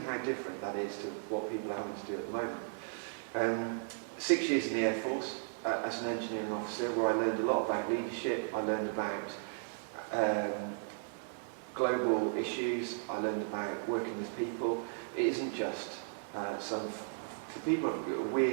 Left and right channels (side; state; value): left; silent; digital silence